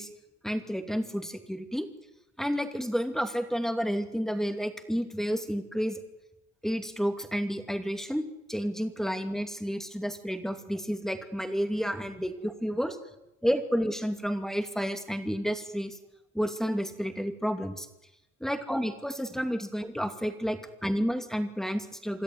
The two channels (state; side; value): normal; both; correlation 0.96